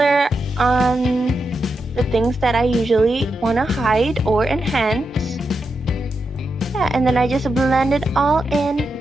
on the things that I usually want to hide or enhance. Yeah, and then I just blend it all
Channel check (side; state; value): both; normal; correlation 0.86